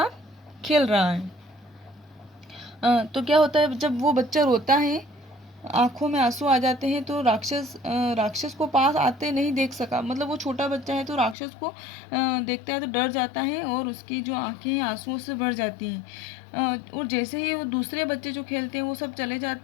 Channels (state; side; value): drops out; right; at 11.4 s